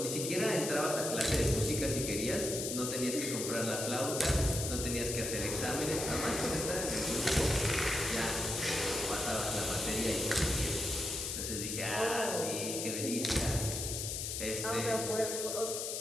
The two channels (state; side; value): noise; left; hiss, 3 dB below the sound